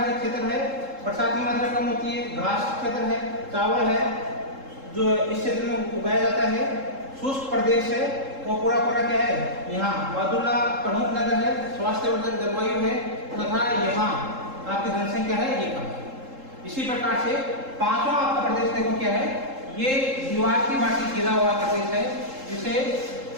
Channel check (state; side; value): late; left; 3.7 ms